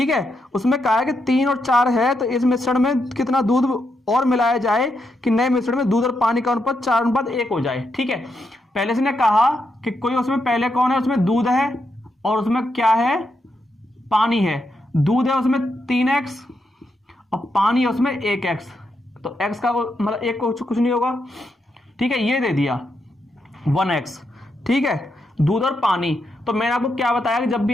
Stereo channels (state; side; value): normal; both; correlation 0.82